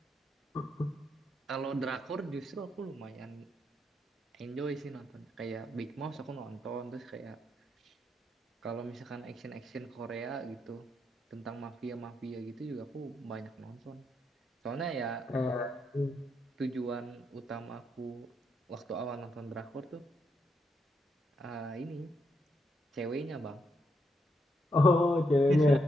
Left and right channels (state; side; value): normal; both; correlation 0.79